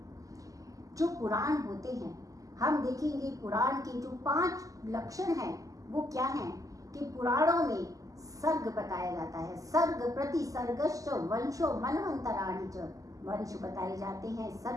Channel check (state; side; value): late; left; 0.17 ms